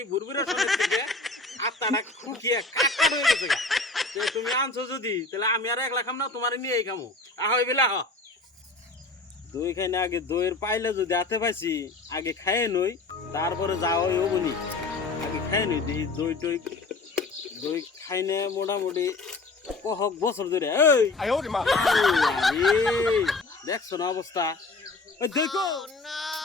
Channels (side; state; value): right; quieter; 3.5 dB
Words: বুরবুরা শরীর থেকে আত্মাটা খুকিয়ে কাকা হয়ে গেছে গা। তো তুমি আনছো যদি তাহলে আমি আর একলা খাম না, তোমারে নিয়েই খামু। আহই বেলা হ, দই খাই না আগে দইয়ের পাইলে যদি হাতে পাইছি আগে খাইয়ে নই, তারপরে যাও ওই অবনি আগে খাই নই। দেখি দই টই দই খাই না মোটামুটি কহক বছর ধরে। এই দেখছো না অবস্থা? ওই দেখো